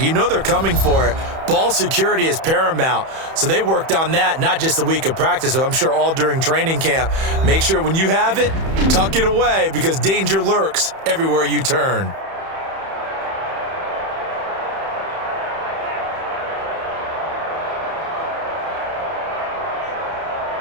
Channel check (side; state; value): left; late; 31 ms